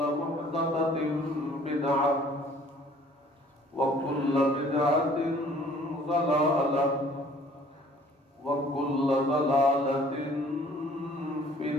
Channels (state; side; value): normal; both; correlation 0.55